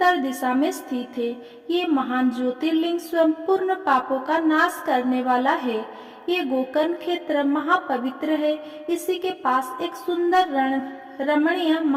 दिशा में स्थित है। ये महान ज्योतिर्लिंग स्वयं पूर्ण पापों का नाश करने वाला है। ये गोकर्ण क्षेत्र महापवित्र है। इसी के पास एक सुंदर रमणीय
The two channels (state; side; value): identical; both; correlation 1.00